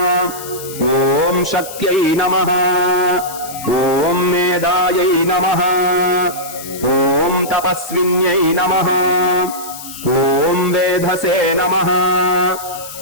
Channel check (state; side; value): noise; left; hiss, 13 dB below the sound